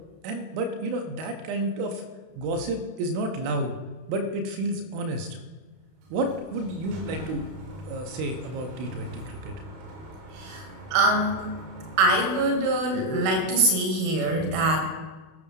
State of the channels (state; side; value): late; left; 31 ms